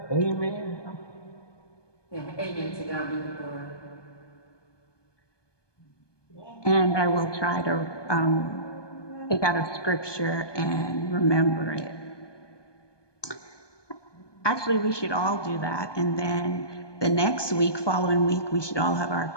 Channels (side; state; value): right; late; 1.2 ms